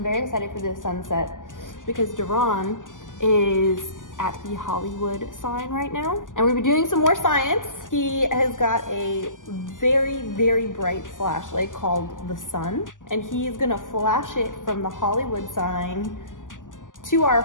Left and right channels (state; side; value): late; right; 0.88 ms